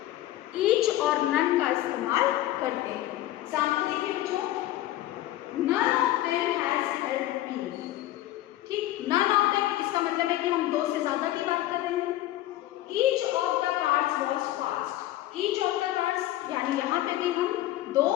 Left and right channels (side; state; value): right; quieter; 14.9 dB